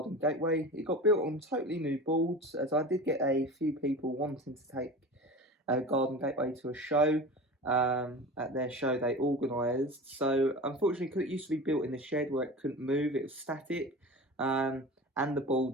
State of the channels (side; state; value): both; normal; correlation 0.33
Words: gateway. It got built on totally new boards, as I did get a few people wanting to take a garden gateway to a show. At their show they organised, so unfortunately, because it used to be built in the shed where it couldn't move, it was static, and the